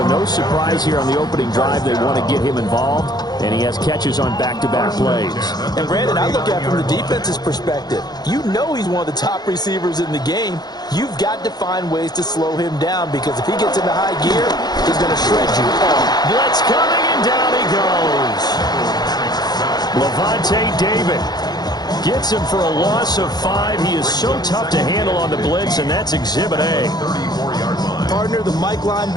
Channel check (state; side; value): late; right; 0.19 ms